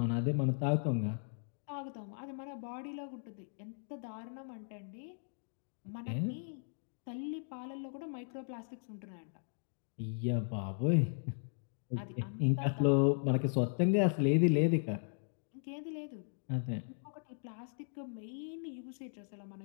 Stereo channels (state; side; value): silent; right; digital silence